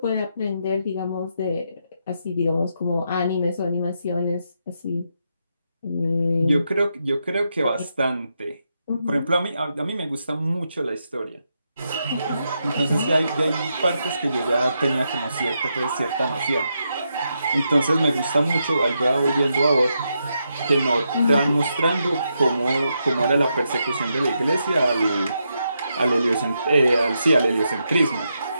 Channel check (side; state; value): both; inverted; correlation -0.83